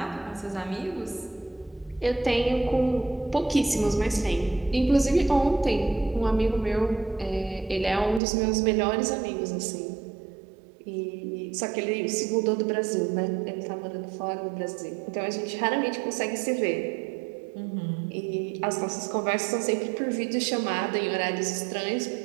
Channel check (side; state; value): left; drops out; at 8.2 s